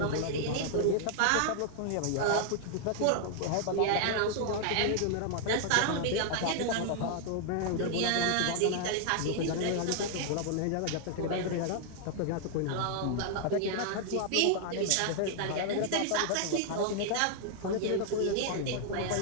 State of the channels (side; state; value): both; different; correlation -0.01